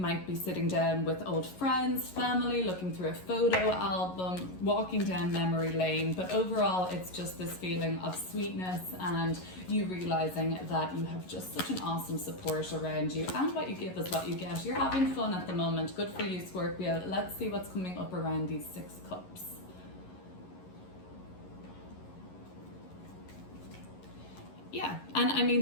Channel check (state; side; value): late; right; 11 ms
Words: be sitting down with old friends, family, looking through a photo album, walking down memory lane, but overall it's just this feeling of sweetness and you realizing that you have just such an awesome support around you, and what you give is what you get. You're having fun at the moment. Good for you, Scorpio. Let's see what's coming up around these 6 cups. Yeah, and I